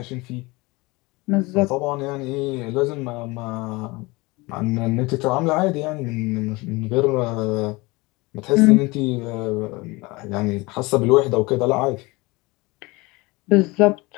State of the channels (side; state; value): right; quieter; 23.7 dB